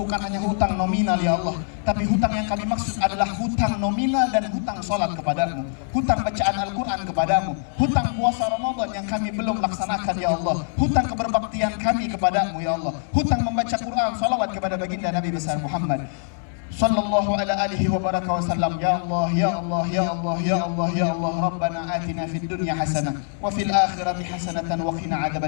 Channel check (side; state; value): right; silent; digital silence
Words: hanya hutang nominal ya Allah, tapi hutang yang kami maksud adalah hutang nominal dan hutang sholat kepadamu, hutang bacaan Al-Quran kepadamu, hutang puasa Ramadan yang kami belum laksanakan ya Allah, hutang keberbaktian kami kepadamu ya Allah, hutang membaca Quran, salawat kepada baginda Nabi besar Muhammad sallallahu ala alihi wa baraka wa sallam. Ya Allah, ya Allah, ya Allah, ya Allah, ya Allah, Rabbana atina fid dunya hasanah wa fil akhirati hasanatan wa qina